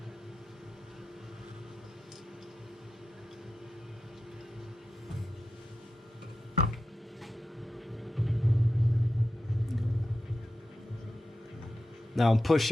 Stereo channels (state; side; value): normal; both; correlation 0.90